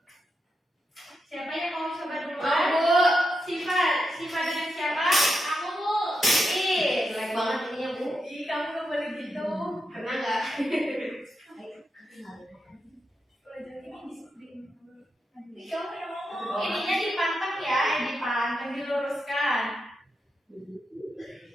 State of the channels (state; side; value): normal; both; correlation 0.85